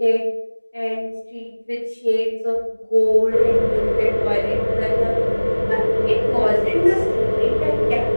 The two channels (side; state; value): both; inverted; correlation -1.00